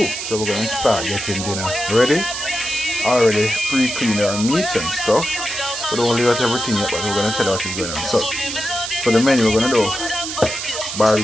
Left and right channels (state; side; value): noise; right; hiss, 6 dB below the sound